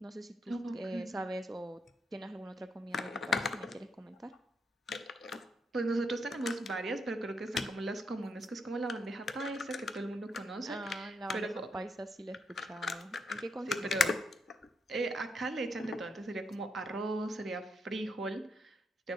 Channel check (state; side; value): normal; both; correlation 0.79